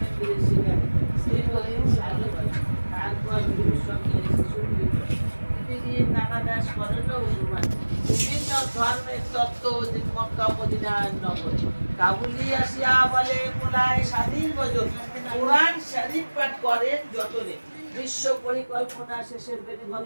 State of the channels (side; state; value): both; inverted; correlation -1.00